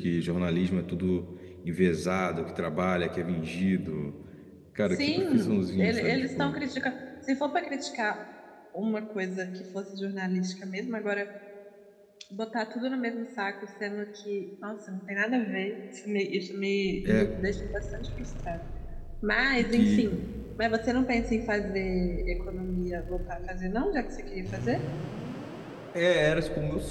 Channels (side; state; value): both; identical; correlation 1.00